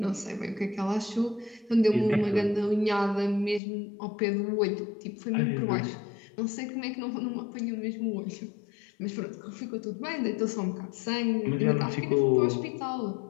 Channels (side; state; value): right; drops out; at 3.6 s